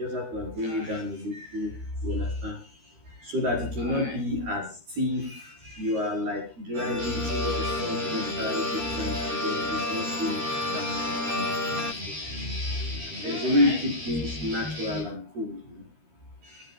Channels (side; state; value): left; late; 13 ms